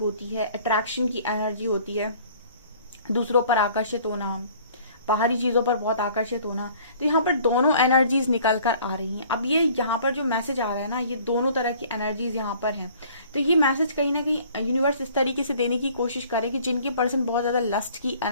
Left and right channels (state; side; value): inverted; both; correlation -0.53